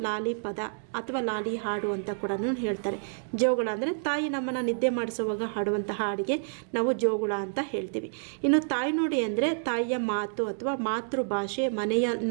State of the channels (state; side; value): silent; left; digital silence